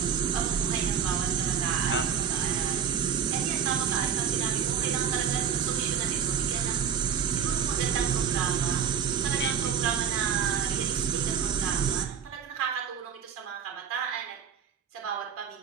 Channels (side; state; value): left; quieter; 7.6 dB